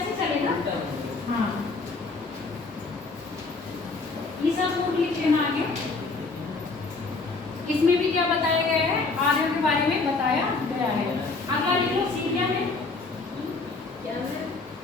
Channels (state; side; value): quieter; right; 3.9 dB